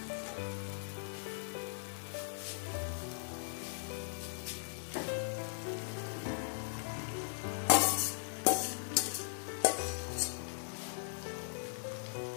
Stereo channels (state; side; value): silent; right; digital silence